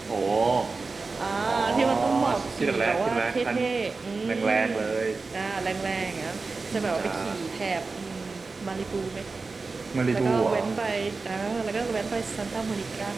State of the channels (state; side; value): quieter; left; 4.0 dB